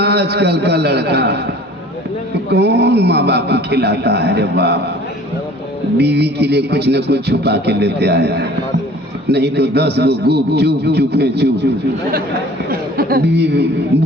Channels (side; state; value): both; normal; correlation 0.48